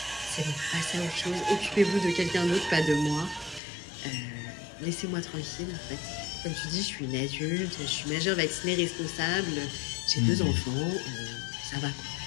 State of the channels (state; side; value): drops out; right; at 3.6 s